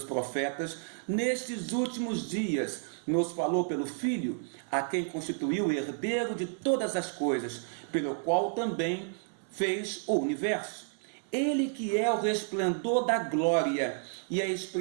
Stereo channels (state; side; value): silent; left; digital silence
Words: profetas, nestes últimos dias nos falou pelo Filho, a quem constituiu herdeiro de todas as coisas, pelo qual também fez o universo. Ele que é o resplendor da glória e a